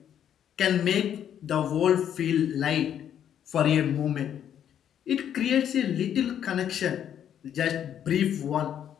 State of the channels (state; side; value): quieter; right; 9.6 dB